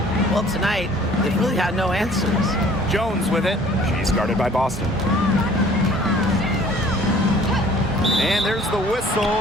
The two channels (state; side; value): normal; both; correlation 0.53